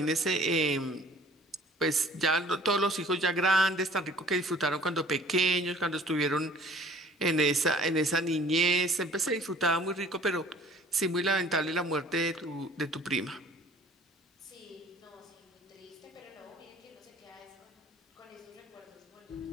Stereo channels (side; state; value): both; normal; correlation 0.51